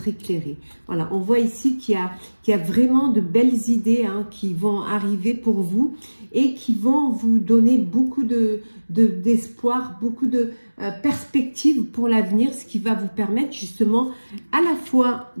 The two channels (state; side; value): inverted; both; correlation -1.00